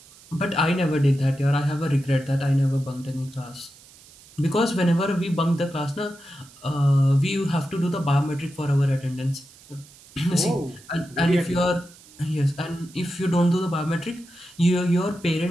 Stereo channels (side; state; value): right; noise; hiss, 24 dB below the sound